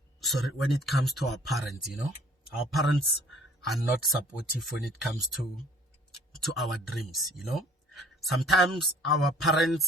when it comes to our parents, Our parents are not supportive when it comes to our dreams, Sometimes our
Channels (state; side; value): normal; both; correlation 0.55